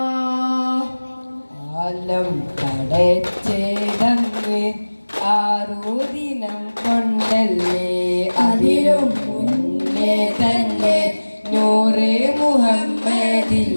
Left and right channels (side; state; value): both; inverted; correlation -1.00